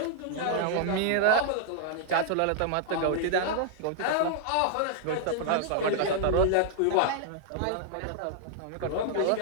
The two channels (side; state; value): both; different; correlation -0.01